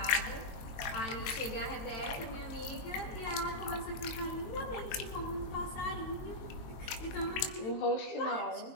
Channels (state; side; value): late; right; 22 ms